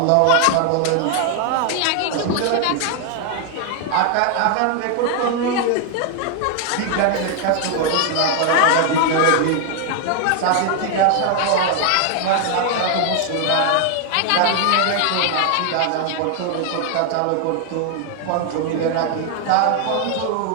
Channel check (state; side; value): different; both; correlation 0.00